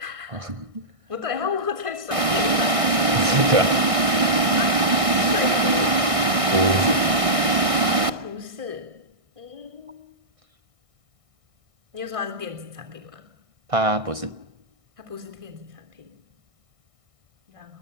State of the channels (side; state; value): left; late; 1.6 ms